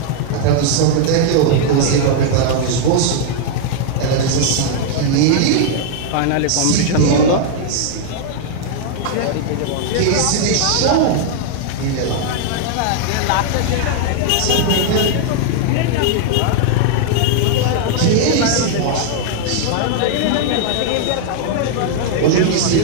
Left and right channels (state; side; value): different; both; correlation 0.00